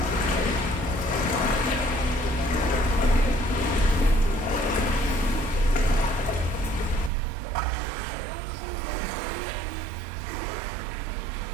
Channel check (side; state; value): left; drops out; at 7.1 s